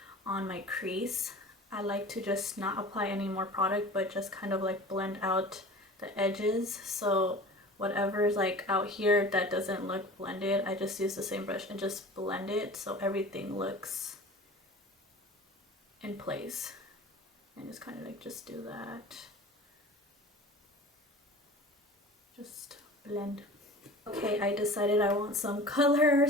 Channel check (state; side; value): normal; both; correlation 0.39